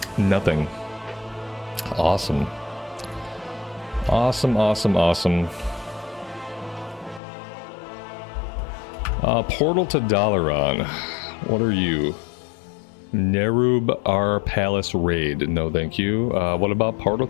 Nothing. Awesome. Awesome, awesome, awesome. Portal to Dalaran. What are you? Nerub R Palace Raid. No, thank you. What about Portal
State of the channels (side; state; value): right; drops out; at 7.2 s